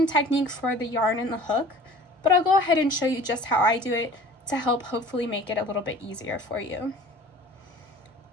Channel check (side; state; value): both; normal; correlation 0.46